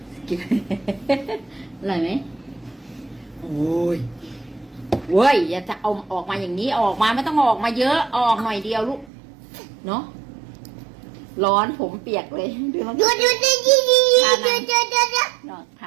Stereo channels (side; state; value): left; drops out; at 9.1 s